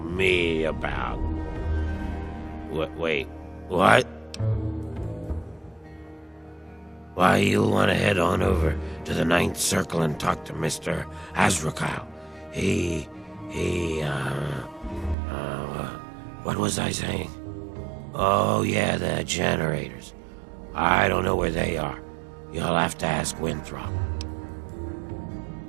me about... Wait, what? Why, you'll want to head on over to the Ninth Circle and talk to Mr. Azrakal. What was I saying? Oh, yeah, the generators. I don't know where they are. You'll have to ask Winthrop.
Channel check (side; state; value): left; drops out; at 15.2 s